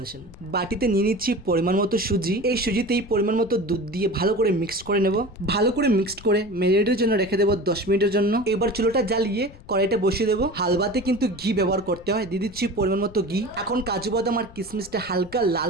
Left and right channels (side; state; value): left; noise; rumble, 20 dB below the sound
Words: বাটিতে নিয়ে নিচ্ছি পরিমাণ মতো সুজি। এই সুজিতেই পরিমাণ মতো দুধ দিয়ে ভালো করে মিক্সড করে নেব। ভালো করে মিক্সড করে মেরিনেটের জন্য রেখে দেবো 10 মিনিটের জন্য। এবার চুলোটা জ্বালিয়ে কড়াইটা বসিয়ে দেবো। হালুয়াতে কিন্তু ঘি ব্যবহার করতে হয়, দিয়ে দিচ্ছি পরিমাণ মতো ঘি। এখন কাজু বাদাম আর কিশমিশটা হালকা লাল